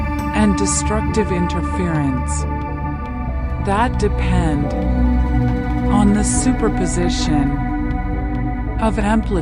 and destructive interference that depend on the superposition of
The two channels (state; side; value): identical; both; correlation 1.00